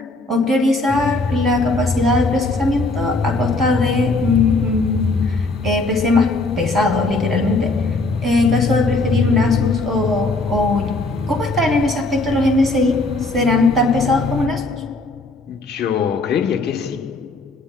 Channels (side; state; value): right; quieter; 3.1 dB